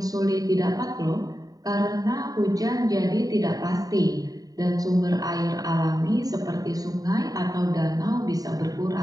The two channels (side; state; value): left; late; 0.18 ms